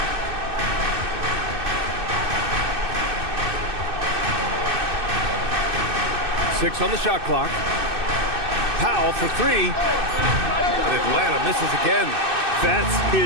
Six on the shot clock. Powell for three. And Atlanta misses again. That's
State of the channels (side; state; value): left; late; 2.6 ms